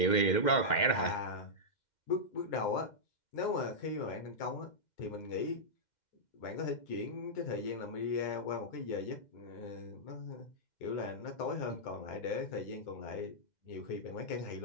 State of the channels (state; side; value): late; right; 2.1 ms